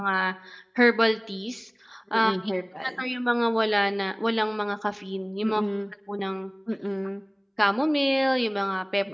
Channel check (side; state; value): both; identical; correlation 1.00